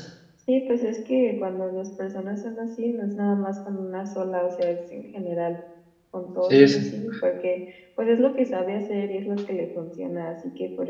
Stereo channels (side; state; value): both; identical; correlation 1.00